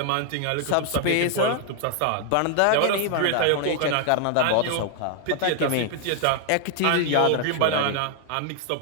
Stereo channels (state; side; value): different; both; correlation 0.00